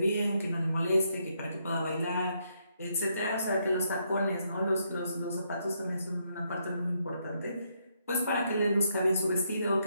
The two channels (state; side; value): inverted; both; correlation -0.76